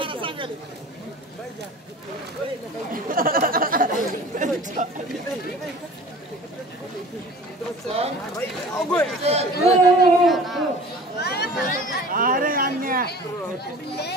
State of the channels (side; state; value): both; normal; correlation 0.42